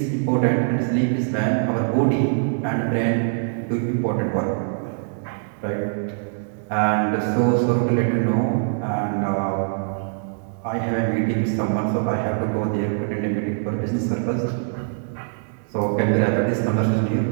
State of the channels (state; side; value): silent; left; digital silence